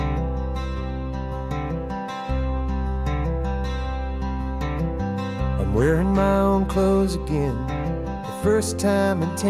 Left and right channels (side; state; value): both; identical; correlation 1.00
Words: I'm wearing my own clothes again, the first time in